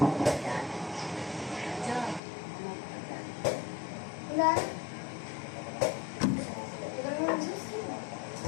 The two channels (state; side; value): drops out; right; at 2.2 s